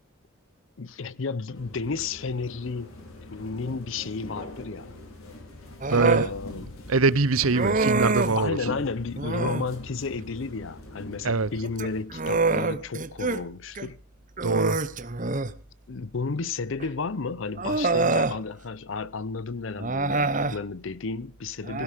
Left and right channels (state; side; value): normal; both; correlation 0.05